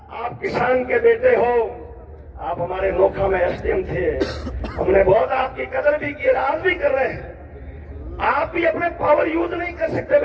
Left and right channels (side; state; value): both; identical; correlation 1.00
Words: आप किसान के बेटे हो, आप हमारे नोखा में एसडीएम थे, हमने बहुत आपकी कदर भी की, आज भी कर रहे हैं। आप भी अपने पावर यूज नहीं कर सकते